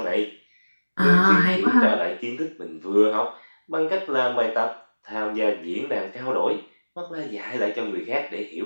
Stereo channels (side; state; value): both; inverted; correlation -1.00